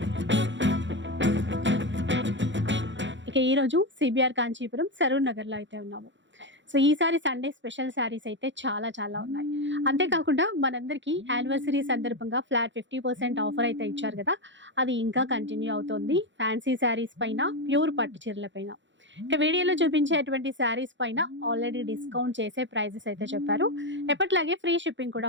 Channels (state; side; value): late; left; 0.54 ms